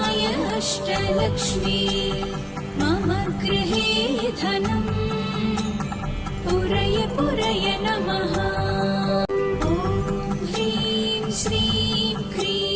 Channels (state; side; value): identical; both; correlation 1.00